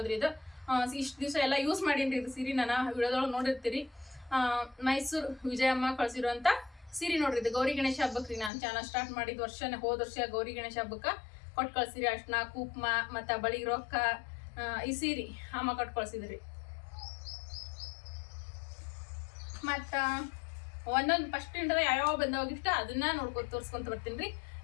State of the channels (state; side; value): drops out; right; at 8.5 s